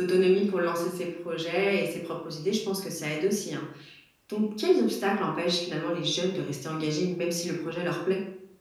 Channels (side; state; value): both; identical; correlation 1.00